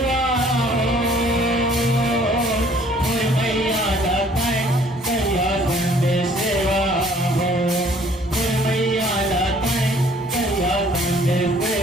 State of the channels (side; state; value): both; normal; correlation 0.57